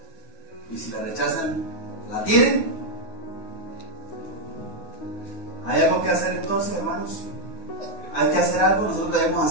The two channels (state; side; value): late; right; 9.9 ms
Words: Y si la rechazan, ¿la tienen? ¿Hay algo que hacer entonces, hermanos? ¿Hay que hacer algo? ¿Nosotros debemos